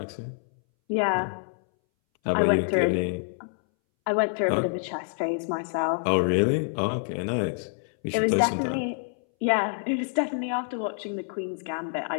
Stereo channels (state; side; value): silent; right; 60 dB below the other